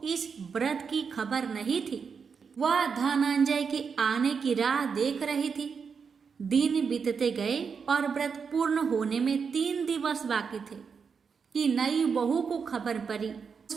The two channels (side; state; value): left; quieter; 5.9 dB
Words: इस व्रत की खबर नहीं थी। वह धनंजय के आने की राह देख रही थी। दिन बीतते गए और व्रत पूर्ण होने में 3 दिवस बाकी थे कि नई बहू को खबर पड़ी।